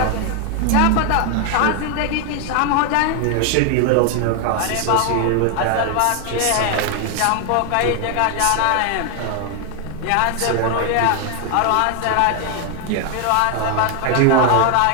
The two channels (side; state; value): both; different; correlation 0.00